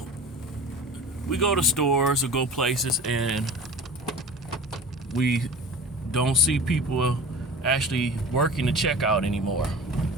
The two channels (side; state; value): both; normal; correlation 0.37